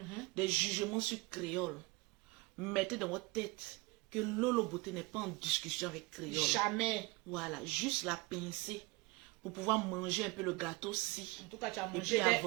Des jugements sur créole. Mettez dans votre tête que Lolo Beauté n'est pas en discussion avec créole. Jamais. Voilà, juste la pincer pour pouvoir manger un peu le gâteau si. En tout cas, tu as Et mangé. puis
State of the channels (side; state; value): left; quieter; 24.6 dB